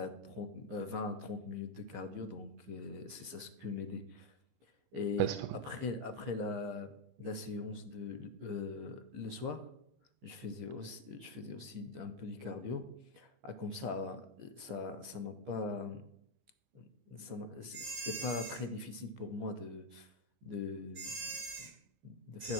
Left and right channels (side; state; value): left; late; 15 ms